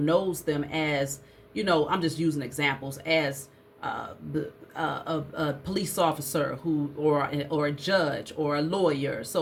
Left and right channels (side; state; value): both; identical; correlation 1.00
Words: knows them as, you know, I'm just using examples, as a police officer who, or a judge or a lawyer.